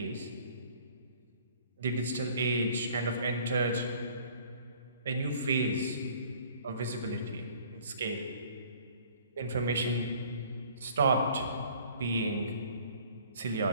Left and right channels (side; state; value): both; inverted; correlation -0.53